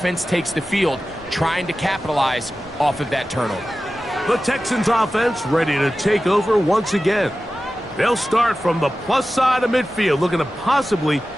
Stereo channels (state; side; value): normal; both; correlation 0.94